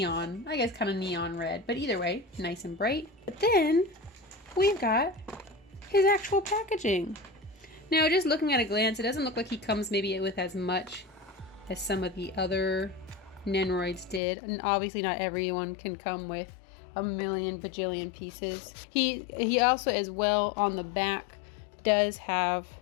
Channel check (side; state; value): right; drops out; at 14.2 s